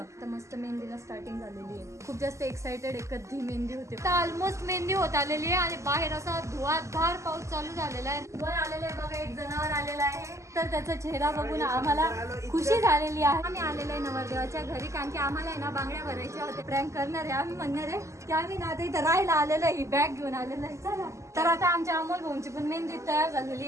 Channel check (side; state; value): left; late; 0.14 ms